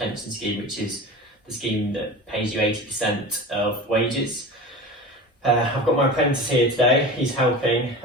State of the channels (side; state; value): both; normal; correlation 0.33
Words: scheme, which is the scheme that pays you 80% of wages. I've got my apprentice here today, he's helping,